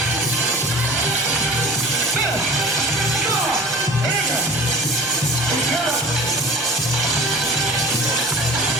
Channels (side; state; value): both; normal; correlation 0.41